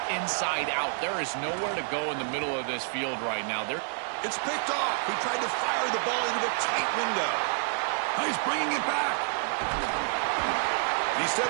inside out. There is nowhere to go in the middle of this field right now. It's picked off. He tried to fire the ball into a tight window. He's bringing it back. He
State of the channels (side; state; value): left; silent; digital silence